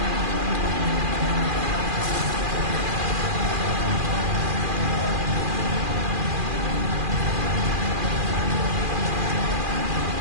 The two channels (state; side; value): late; left; 2.4 ms